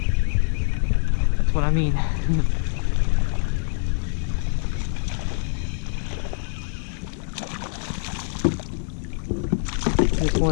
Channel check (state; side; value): silent; right; digital silence